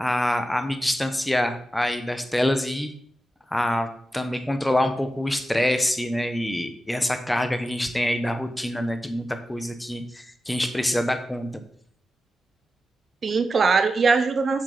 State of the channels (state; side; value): normal; both; correlation 0.91